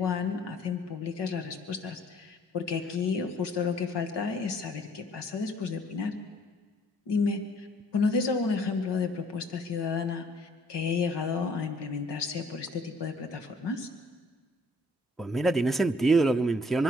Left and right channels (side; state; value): both; normal; correlation 0.60